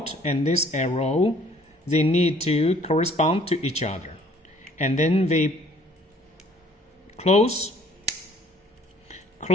and this arrow. They need to correspond to each other, and then we close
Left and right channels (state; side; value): normal; both; correlation 0.58